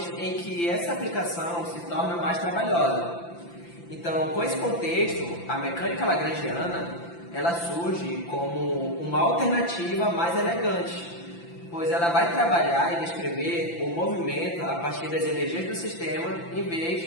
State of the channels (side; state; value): right; late; 5.9 ms